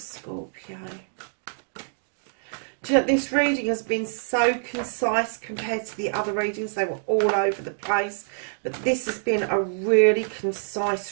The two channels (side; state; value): left; silent; digital silence